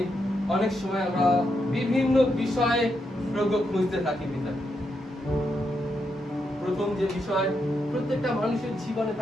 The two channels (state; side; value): normal; both; correlation 0.82